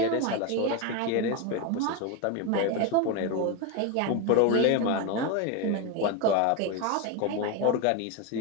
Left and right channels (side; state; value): both; different; correlation 0.03